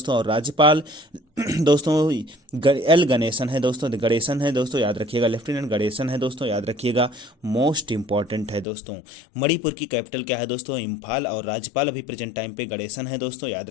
और राज्यपाल दोस्तों एल गणेशन है दोस्तों, गणेशन है दोस्तों, याद रखिएगा, लेफ्टिनेंट गणेशन है दोस्तों, याद रखिएगा। मोस्ट इंपॉर्टेंट है दोस्तों, मणिपुर की कैपिटल क्या है दोस्तों? इम्फाल। और राज्यपाल अभी प्रेजेंट टाइम पे गणेशन है दोस्तों, याद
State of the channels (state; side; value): drops out; right; at 8.7 s